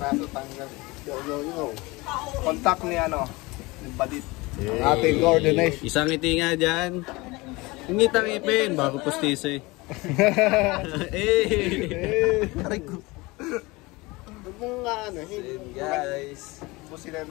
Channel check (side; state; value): right; quieter; 23.2 dB